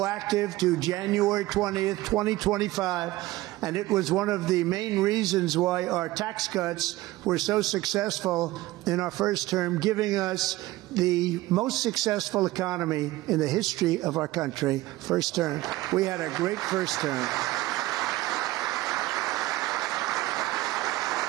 to January 20th, 2025. And it was one of the main reasons why our tax cuts were so successful in our first term, giving us the most successful economy in the history of our country. First term. We had a great first term.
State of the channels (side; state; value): left; quieter; 17.9 dB